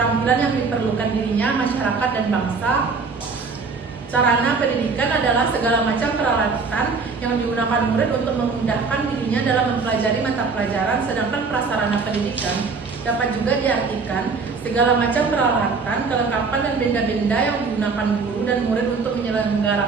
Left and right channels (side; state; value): left; quieter; 4.7 dB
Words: yang diperlukan dirinya, masyarakat, dan bangsa. Sarana pendidikan adalah segala macam peralatan yang digunakan murid untuk memudahkan dirinya dalam mempelajari mata pelajaran, sedangkan prasarana pendidikan dapat juga diartikan segala macam peralatan, kelengkapan, dan benda-benda yang digunakan guru dan murid untuk